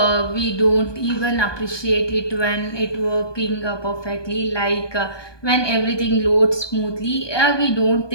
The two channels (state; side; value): late; right; 1.2 ms